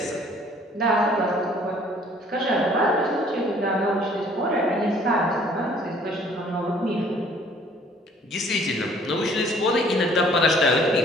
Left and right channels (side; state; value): both; normal; correlation 0.57